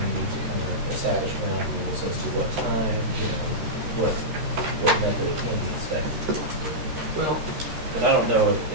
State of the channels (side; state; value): left; late; 13 ms